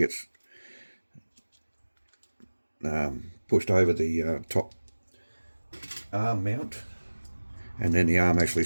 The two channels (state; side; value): inverted; both; correlation -1.00